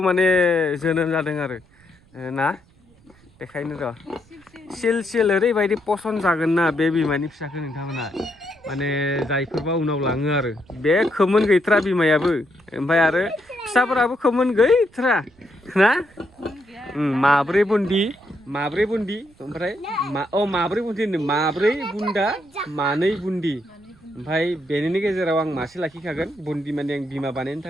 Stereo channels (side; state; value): right; noise; rumble, 30 dB below the sound